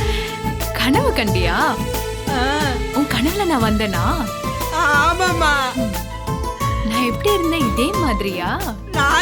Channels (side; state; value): both; identical; correlation 1.00